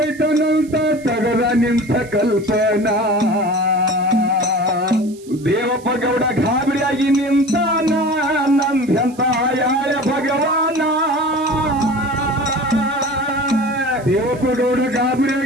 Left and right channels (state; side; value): noise; right; hiss, 24 dB below the sound